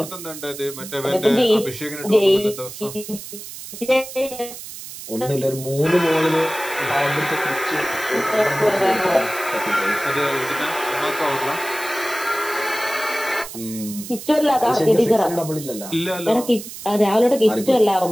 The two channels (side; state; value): right; noise; hiss, 12 dB below the sound